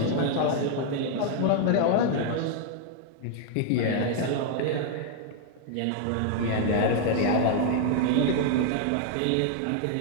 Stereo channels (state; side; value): different; both; correlation 0.00